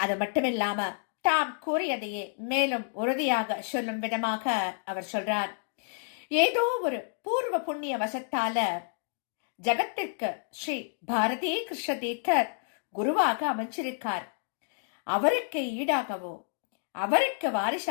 மட்டுமில்லாம தாம் கூறியதையே மேலும் உறுதியாக சொல்லும் விதமாக அவர் சொல்றார். ஏதோ ஒரு பூர்வ புண்ணிய வசத்தால ஜகத்திற்கு ஸ்ரீ பாரதி கிருஷ்ண தீர்த்தர் குருவாக அமைச்சிருக்கார். அவருக்கு ஈடாகவோ அவருக்கு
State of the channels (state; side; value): silent; right; digital silence